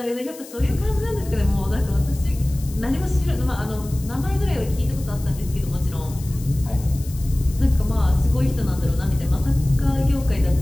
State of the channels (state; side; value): noise; left; hiss, 18 dB below the sound